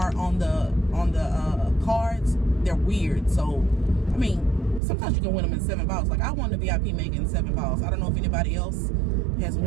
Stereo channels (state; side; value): drops out; left; at 4.8 s